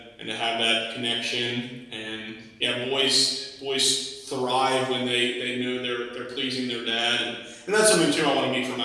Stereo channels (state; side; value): identical; both; correlation 1.00